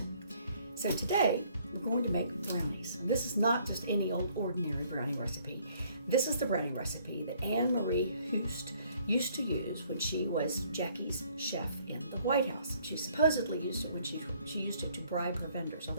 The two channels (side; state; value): both; inverted; correlation -0.62